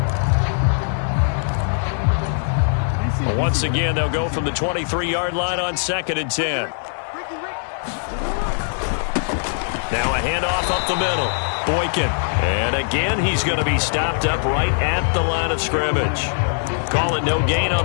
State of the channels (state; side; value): silent; right; 63 dB below the other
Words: Well, once again, they'll go from the 23-yard line on 2nd and 10. Now a handoff up the middle. Boykin. And again, he's going to be stopped up right at the line of scrimmage. Call it no gain on